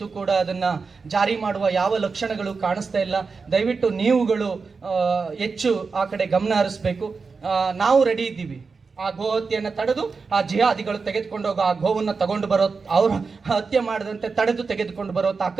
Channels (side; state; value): left; quieter; 4.7 dB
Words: ಕೂಡ ಅದನ್ನ ಜಾರಿ ಮಾಡುವ ಯಾವ ಲಕ್ಷಣಗಳು ಕಾಣಿಸ್ತಾ ಇಲ್ಲ. ದಯವಿಟ್ಟು ನೀವುಗಳು ಹೆಚ್ಚು ಆ ಕಡೆ ಗಮನ ಹರಿಸ್ಬೇಕು. ನಾವು ರೆಡಿ ಇದ್ದೀವಿ, ಆ ಗೋ ಹತ್ಯೆಯನ್ನು ತಡೆದು ಆ ಜಿಹಾದಿಗಳು ತೆಗೆದುಕೊಂಡು ಹೋಗೋ ಆ ಗೋವನ್ನು ತಗೊಂಡು ಬರೋ, ಅವ್ರ ಹತ್ಯೆ ಮಾಡದಂತೆ ತಡೆದು ತೆಗೆದುಕೊಂಡು ಬರೋ